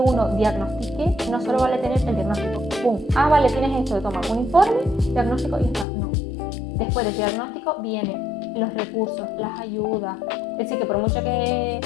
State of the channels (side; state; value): right; drops out; at 5.9 s